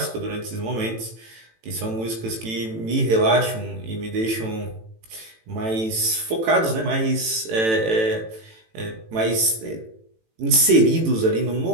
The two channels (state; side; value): late; left; 18 ms